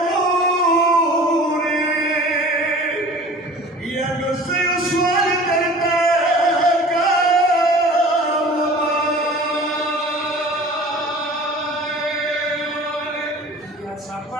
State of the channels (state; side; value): normal; both; correlation 0.43